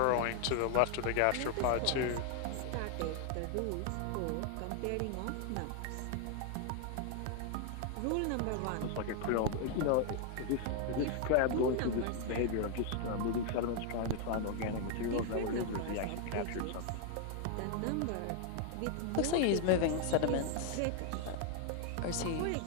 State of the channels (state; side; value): different; both; correlation 0.00